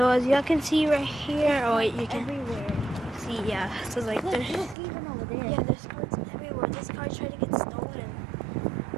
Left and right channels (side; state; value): left; drops out; at 4.8 s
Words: as y'all can see right here, oh wait, you can see, yeah. So like there's even over there. Yeah, there's cards everywhere. This car tried to get stolen.